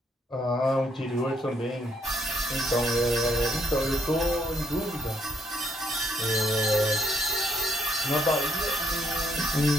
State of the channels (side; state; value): both; normal; correlation 0.72